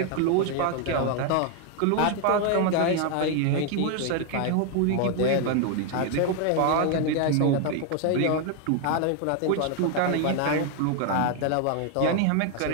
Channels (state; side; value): different; both; correlation 0.01